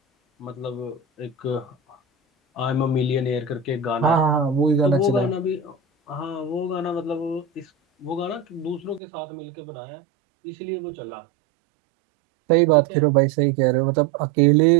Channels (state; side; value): drops out; left; at 9.0 s